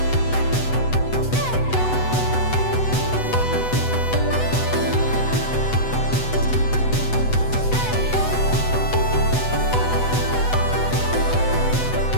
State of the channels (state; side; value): late; right; 8.0 ms